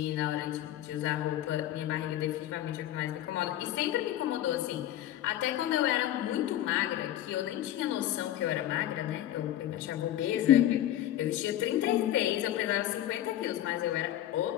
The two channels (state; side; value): quieter; right; 12.8 dB